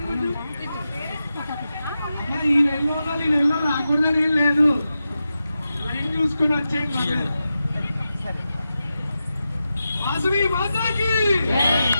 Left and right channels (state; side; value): inverted; both; correlation -0.90